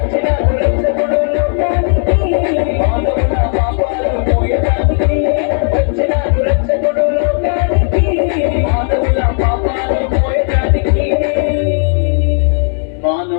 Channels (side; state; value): right; silent; 56 dB below the other